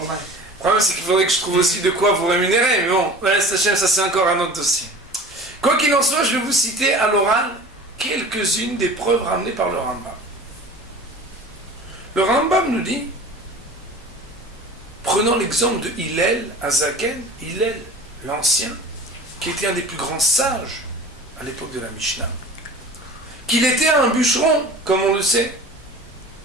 problème, c'est qu'il faudrait que je trouve aussi de quoi vous rémunérer, mais bon, Bezrat Hashem, ça c'est encore un autre dossier. Quoi qu'il en soit, je vais vous citer à l'oral quelques-unes des preuves ramenées par le Rambam. Le Rambam nous dit, prenons l'exemple de Hillel Azaken, Hillel l'ancien, qui était un des plus grands sages à l'époque de la Mishnah, qu'il était un bûcheron, comme on le sait,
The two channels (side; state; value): both; normal; correlation 0.40